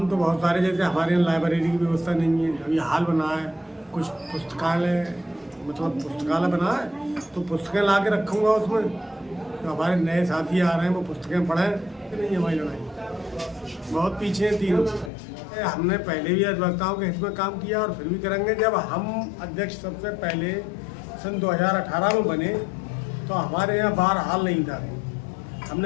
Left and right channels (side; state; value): right; drops out; at 15.1 s